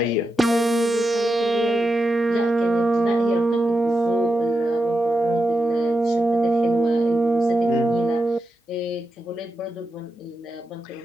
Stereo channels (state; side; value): normal; both; correlation 0.88